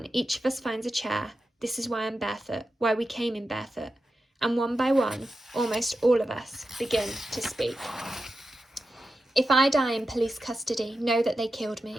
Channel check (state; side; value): normal; both; correlation 0.91